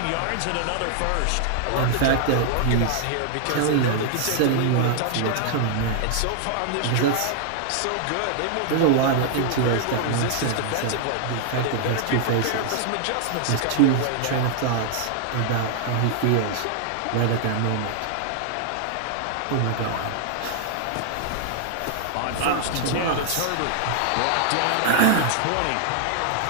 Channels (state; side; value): different; both; correlation 0.00